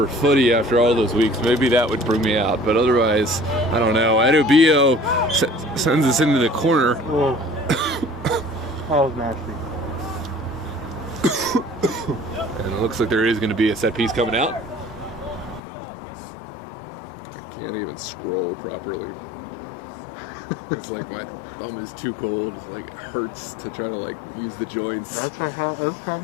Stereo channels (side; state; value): right; drops out; at 15.6 s